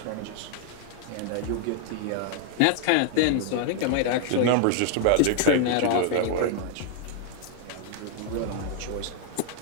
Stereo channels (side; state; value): both; different; correlation 0.00